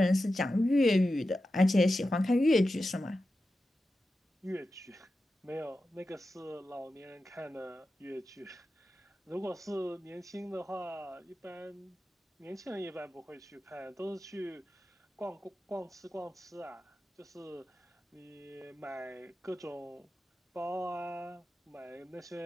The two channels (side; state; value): both; normal; correlation 0.92